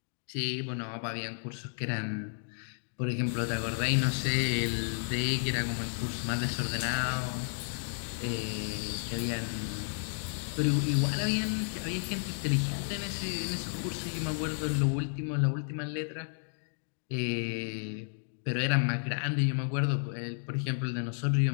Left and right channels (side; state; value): right; silent; digital silence